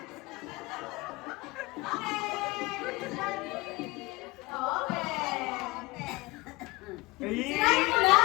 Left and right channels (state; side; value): quieter; right; 22.6 dB